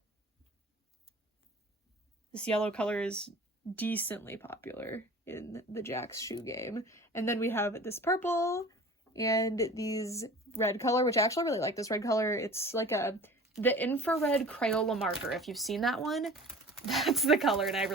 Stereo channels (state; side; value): normal; both; correlation 0.42